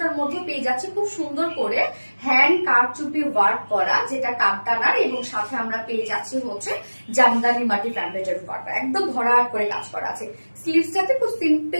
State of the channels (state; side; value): inverted; both; correlation -1.00